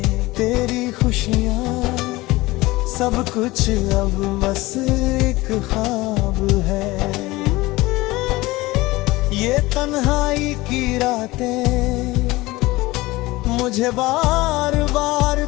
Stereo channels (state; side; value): quieter; right; 20.0 dB